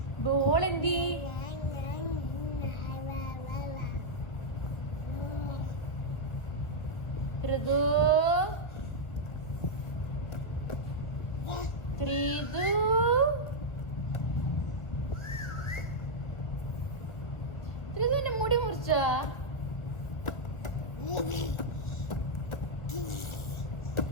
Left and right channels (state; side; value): late; right; 1.3 ms